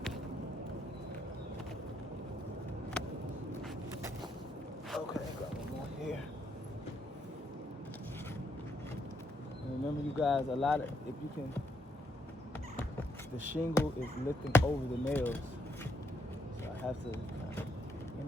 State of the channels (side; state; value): both; normal; correlation 0.75